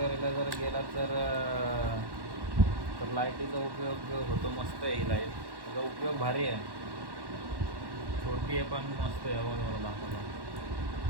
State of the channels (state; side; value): late; left; 1.1 ms